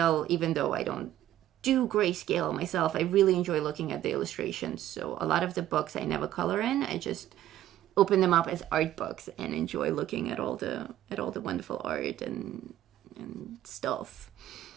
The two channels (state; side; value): quieter; left; 12.9 dB